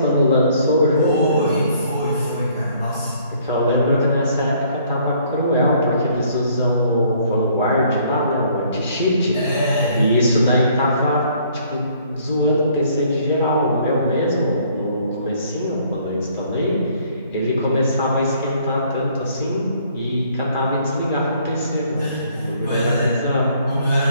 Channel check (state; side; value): inverted; both; correlation -0.62